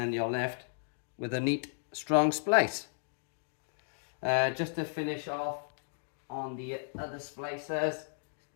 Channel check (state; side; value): silent; right; digital silence